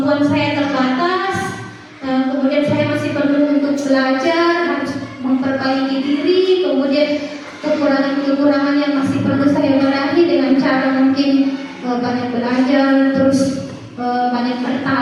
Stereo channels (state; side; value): identical; both; correlation 1.00